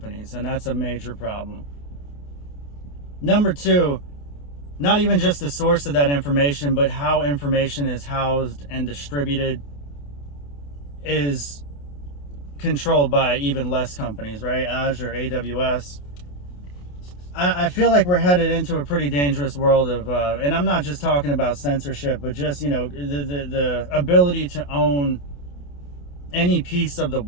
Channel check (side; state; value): right; late; 28 ms